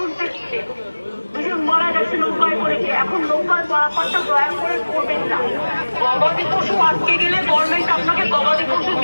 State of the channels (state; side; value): inverted; both; correlation -1.00